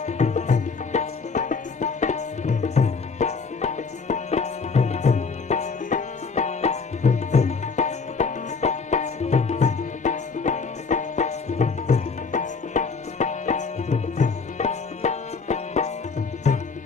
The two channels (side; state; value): right; quieter; 4.9 dB